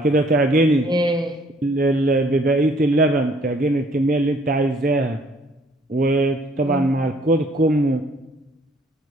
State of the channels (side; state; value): both; normal; correlation 0.60